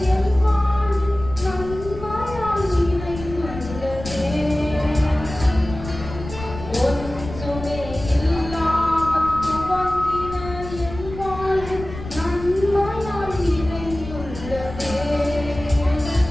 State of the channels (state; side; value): noise; left; rumble, 11 dB below the sound